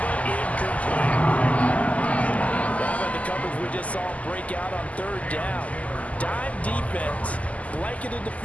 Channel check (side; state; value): right; late; 0.071 ms